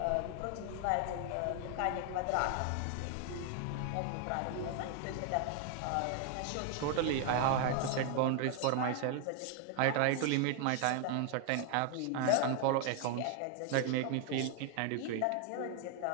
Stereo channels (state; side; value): different; both; correlation 0.00